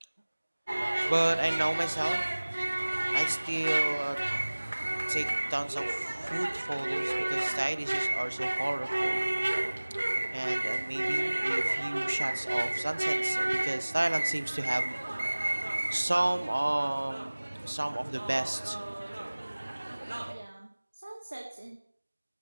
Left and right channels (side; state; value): both; inverted; correlation -1.00